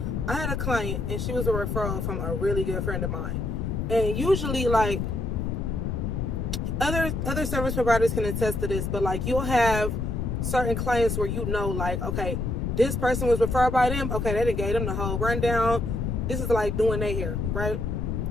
I had a client and she was a referral from a really good friend of mine. And usually, like, other service providers can attest to this, but like, you'll have certain clients where like, okay, this person was referred by them. Okay, they done gave them the whole rundown. This is like doing their hair, right?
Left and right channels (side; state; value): left; noise; rumble, 1 dB below the sound